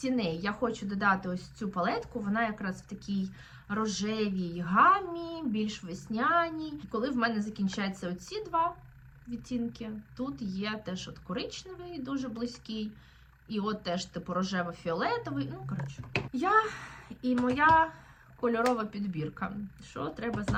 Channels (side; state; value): both; identical; correlation 1.00